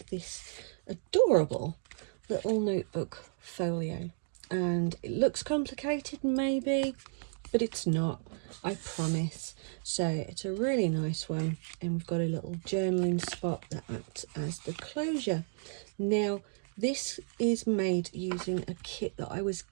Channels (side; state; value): left; silent; digital silence